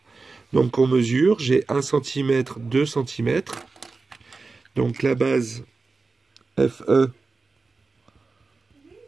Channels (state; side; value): quieter; left; 4.0 dB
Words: Donc on mesure, j'ai 1 cm, 2 cm. Donc la base FE